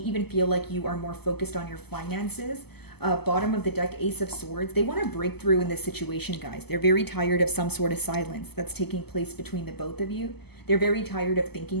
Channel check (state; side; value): late; right; 0.97 ms